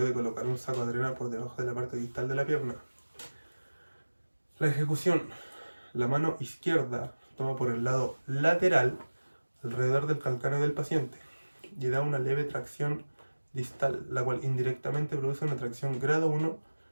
colocar un saco de arena por debajo de la parte distal de la pierna. La ejecución. La mano izquierda toma por el lado lateral alrededor del calcáneo del paciente y da una leve tracción distal, la cual indirectamente produce una tracción grado 1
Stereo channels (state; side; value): inverted; both; correlation -1.00